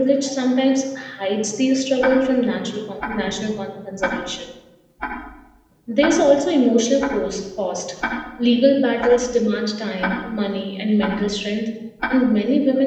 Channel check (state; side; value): identical; both; correlation 1.00